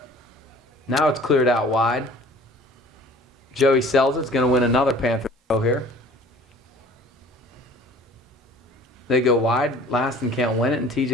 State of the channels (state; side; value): normal; both; correlation 0.49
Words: Now it's cleared out wide. Joey sells it. It's going to win another Panther throw here. They go wide. Laston can't win it, and